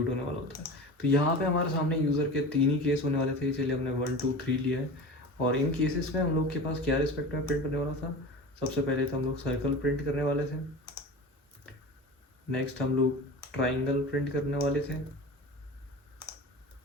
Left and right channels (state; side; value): normal; both; correlation 0.33